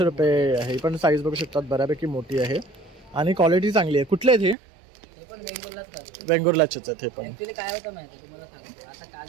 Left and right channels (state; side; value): drops out; left; at 4.5 s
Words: रुपये आहे. पण साईज बघू शकतात बऱ्यापैकी मोठी आहे आणि क्वालिटी चांगली आहे. कुठले आहेत हे? हे पण वेंगुर्लाच करतो. बेंगुर्लाचेच आहेत हे पण. ऍक्च्युली काय होतं माहिती आहे तुम्हाला सांगतो. आता